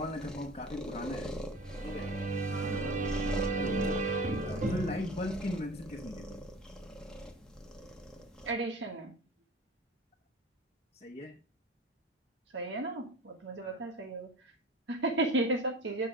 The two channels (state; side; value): normal; both; correlation 0.38